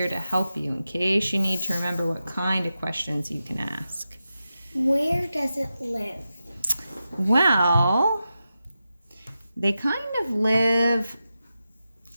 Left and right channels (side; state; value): both; inverted; correlation -0.91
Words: to help you in case you need to remember what kind of questions you can ask. Where does it live? Well, they kind of live